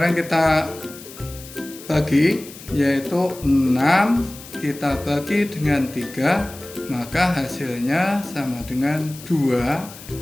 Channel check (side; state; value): left; noise; hiss, 17 dB below the sound